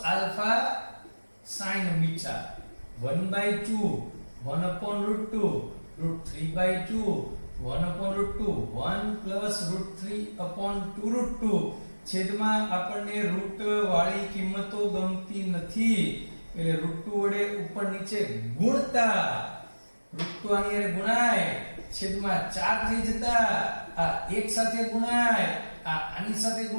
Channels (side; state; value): both; inverted; correlation -1.00